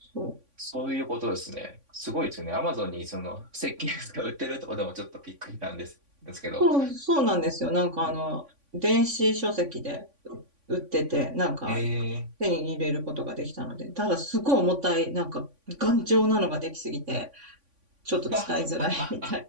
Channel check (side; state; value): left; late; 3.5 ms